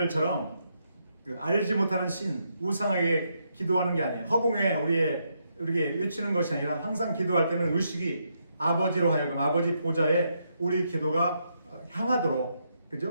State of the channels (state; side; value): inverted; both; correlation -0.79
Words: 알지 못하는 신, 우상에게 기도하는 게 아니에요. 허공에 우리에게 외치는 것이 아니라 항상 기도할 때는 의식이 아버지로 하여금 아버지 보좌에 우리 기도가 향하도록,